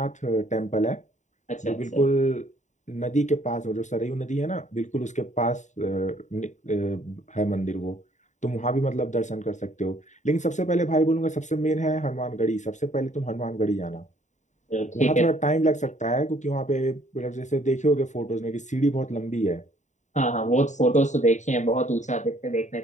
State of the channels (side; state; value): right; late; 0.35 ms